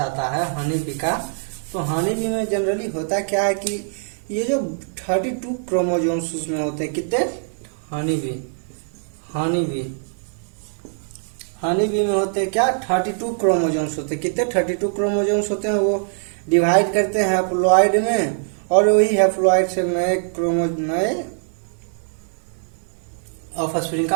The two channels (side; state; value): left; silent; 57 dB below the other